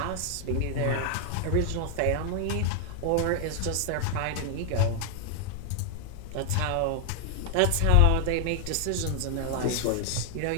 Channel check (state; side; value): different; both; correlation 0.00